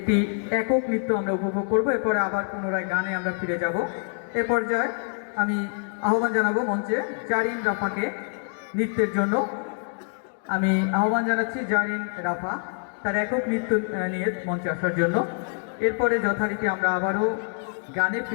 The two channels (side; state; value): right; silent; 57 dB below the other